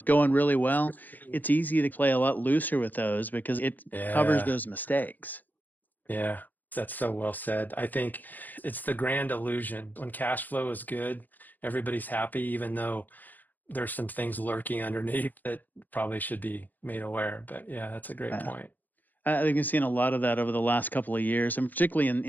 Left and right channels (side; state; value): right; late; 0.085 ms